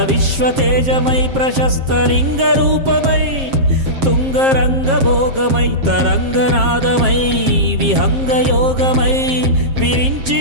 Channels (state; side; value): late; left; 7.5 ms